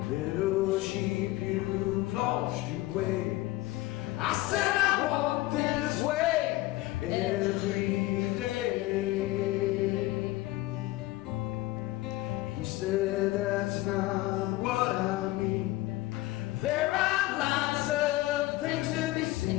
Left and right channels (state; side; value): quieter; right; 18.1 dB